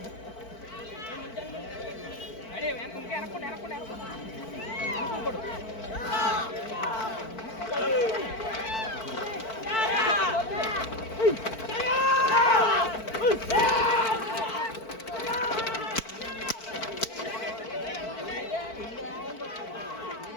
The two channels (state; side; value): late; right; 4.5 ms